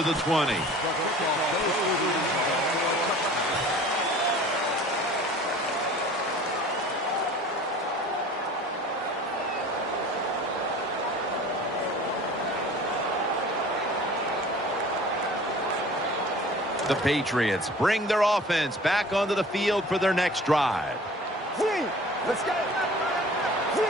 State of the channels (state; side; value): normal; both; correlation 0.45